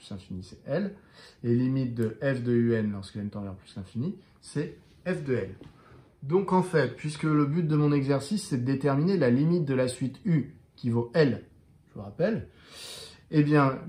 l'infini, c'est L. Et limite de f de un lorsque n tend vers plus l'infini, c'est f de L. Donc en fait, puisque le but de mon exercice, c'est de déterminer la limite de la suite u qui vaut L, je vous rappelle, eh bien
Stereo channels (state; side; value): identical; both; correlation 1.00